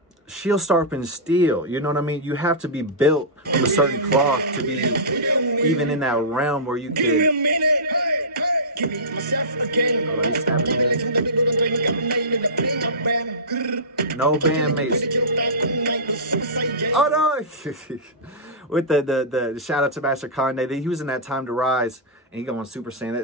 shield sharpens steel. You know what I mean? You have to be built from a certain cloth to be even in that realm where you can. Oh, he's snapping. No bandmates. Oh no! With the shout out to Master Kanye, he was in that Time to Rise, and he going Super Saiyan.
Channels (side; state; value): both; normal; correlation -0.18